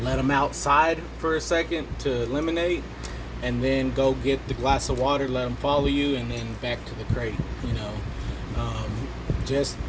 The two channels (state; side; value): identical; both; correlation 1.00